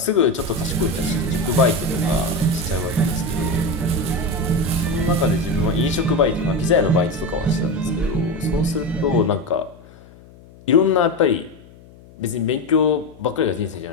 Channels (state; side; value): noise; left; hum, 23 dB below the sound